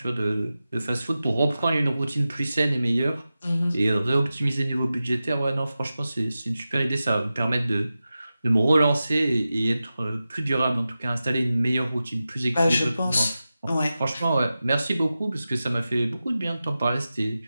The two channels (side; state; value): both; inverted; correlation -0.94